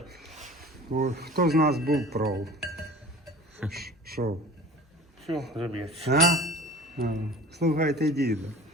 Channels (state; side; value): normal; both; correlation 0.42